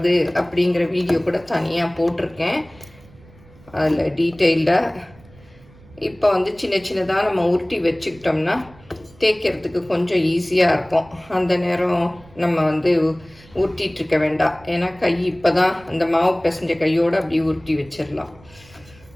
அப்படிங்கிற வீடியோ கூட தனியாக போட்டிருக்கேன், அதில் டீட்டெயில்டாக. இப்போ வந்து சின்ன சின்னதாக நம்ம உருட்டி வச்சுக்கிட்டோம்னா தேய்க்கிறதுக்கு கொஞ்சம் ஈஸியாக இருக்கும். அந்த நேரம் நம்ம வந்து உருட்டிகிட்ருக்க வேண்டாம். ஏன்னா கை இப்போ தான் அந்த மாவு பிசைஞ்ச கையோடு அப்படியே உருட்டி வச்சிடலாம்.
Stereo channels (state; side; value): noise; right; rumble, 25 dB below the sound